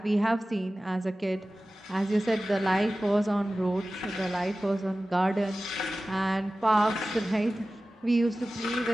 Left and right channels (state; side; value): normal; both; correlation 0.96